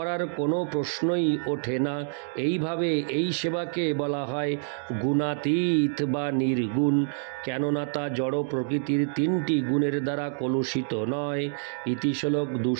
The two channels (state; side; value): silent; left; digital silence